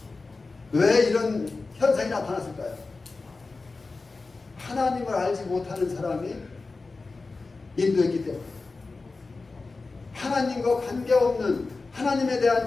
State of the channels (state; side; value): quieter; right; 3.8 dB